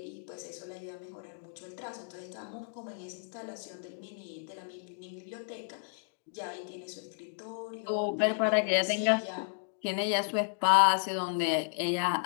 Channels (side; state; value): right; silent; 56 dB below the other